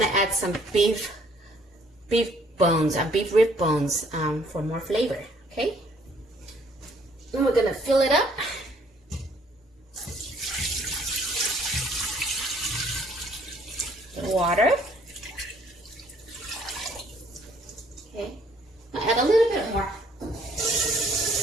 to add some beef bones, beef rib bones for more flavor, okay? Then we're going to fill it up. Water. Okay, I'll add a little bit more.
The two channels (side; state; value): both; normal; correlation 0.62